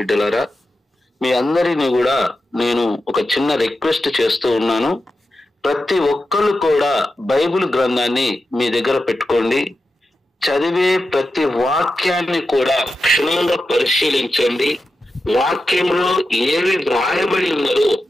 మీ అందరినీ కూడా నేను ఒక చిన్న రిక్వెస్ట్ చేస్తూ ఉన్నాను. ప్రతి ఒక్కరు కూడా బైబిల్ గ్రంథాన్ని మీ దగ్గర పెట్టుకోండి. చదివే ప్రతి వాక్యాన్ని కూడా క్షుణ్ణంగా పరిశీలించండి. వాక్యంలో ఏవి వ్రాయబడి ఉన్నదో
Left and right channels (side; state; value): both; normal; correlation 0.90